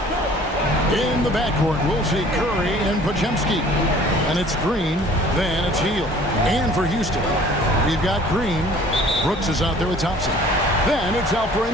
In the backcourt, we'll see Curry and Podziemski. And it's Green, then it's Hield. And for Houston, we've got Green. Brooks is out there with Thompson. Then it's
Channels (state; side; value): normal; both; correlation 0.51